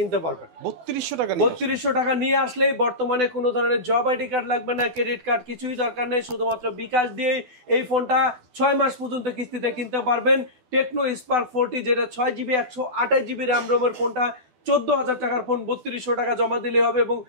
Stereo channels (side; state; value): left; late; 12 ms